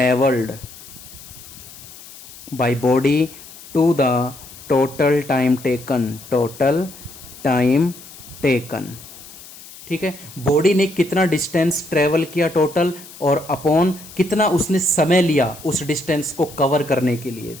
by body to the total time taken, total time taken. ठीक है, बॉडी ने कितना डिस्टेंस ट्रेवल किया टोटल, और अपॉन कितना उसने समय लिया उस डिस्टेंस को कवर करने के लिए।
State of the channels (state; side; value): noise; left; hiss, 18 dB below the sound